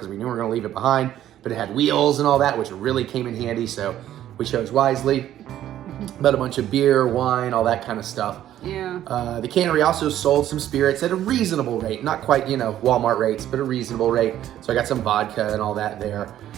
we knew we were going to leave it behind, but it had wheels and all that, which really came in handy, so we chose wisely. But a bunch of beer, wine, all that kind of stuff. Yeah. The Cannery also sold some spirits at a reasonable rate. Not quite, you know, Walmart rates, but a reasonable rate. So I got some vodka and all that there.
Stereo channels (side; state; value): left; quieter; 12.1 dB